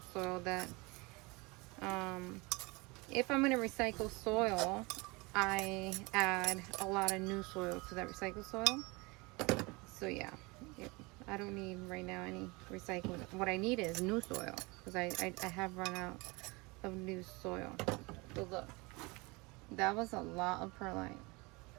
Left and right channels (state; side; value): quieter; left; 25.8 dB